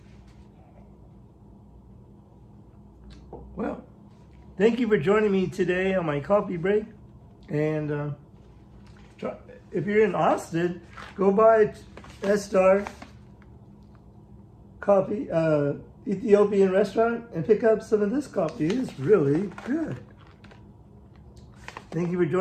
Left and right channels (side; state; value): both; identical; correlation 1.00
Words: well, thank you for joining me today on my coffee break. And if you're in Austin, go by S-Star Coffee, Ethiopian restaurant, and pick up some of this coffee. It's really good. Thank you for